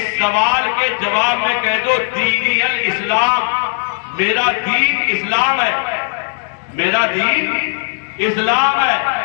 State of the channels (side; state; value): right; silent; digital silence